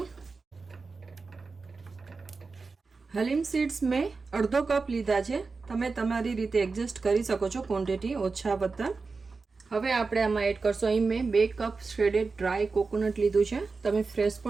હલીમ સીડ્સ મેં અડધો કપ લીધા છે. તમે તમારી રીતે એડજસ્ટ કરી શકો છો ક્વોન્ટિટી ઓછા વત્તા. હવે આપણે આમાં એડ કરશું. અહીં મેં 2 કપ શ્રેડેડ ડ્રાય કોકોનટ લીધું છે. તમે ફ્રેશ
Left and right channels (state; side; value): quieter; left; 4.3 dB